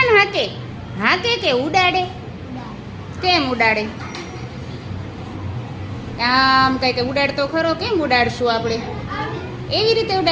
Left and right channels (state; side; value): identical; both; correlation 1.00